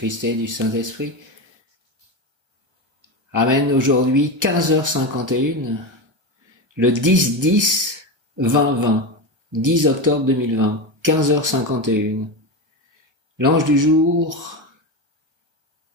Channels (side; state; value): left; late; 1.3 ms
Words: et du Saint-Esprit. Amen. Aujourd'hui, 15h51, le 10-10-2020, 10 octobre 2020, 15h51. L'ange du jour